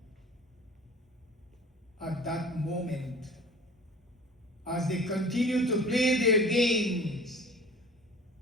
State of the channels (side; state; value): both; normal; correlation 0.43